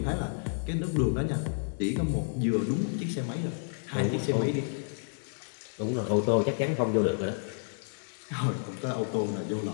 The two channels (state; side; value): silent; right; digital silence